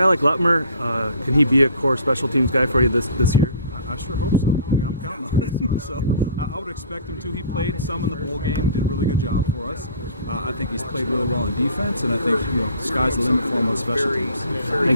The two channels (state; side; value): inverted; both; correlation -0.49